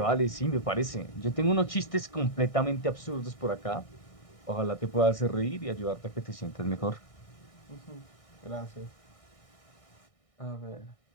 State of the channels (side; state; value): right; late; 1.6 ms